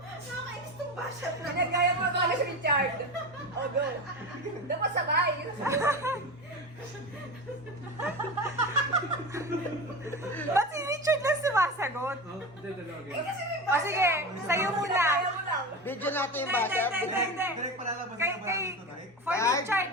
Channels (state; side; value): normal; both; correlation 0.25